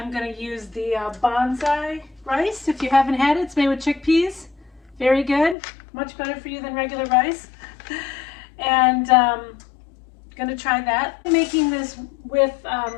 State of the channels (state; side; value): drops out; right; at 5.6 s